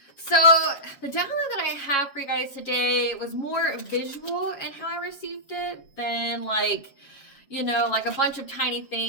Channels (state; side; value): late; right; 7.2 ms